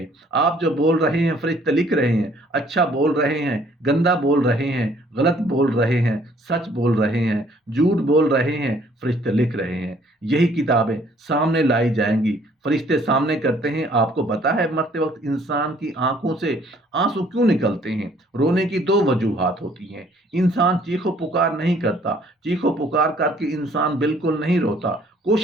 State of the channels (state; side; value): normal; both; correlation 0.61